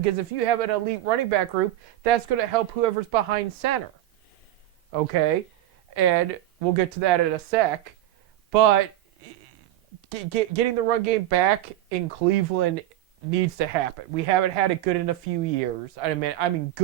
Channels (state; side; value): quieter; left; 13.6 dB